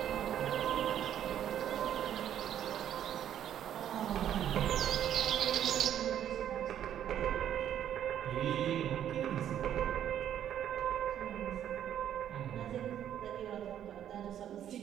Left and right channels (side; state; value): left; quieter; 10.3 dB